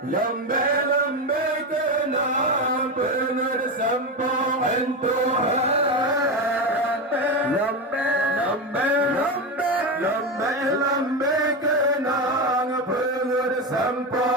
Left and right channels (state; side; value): normal; both; correlation 0.16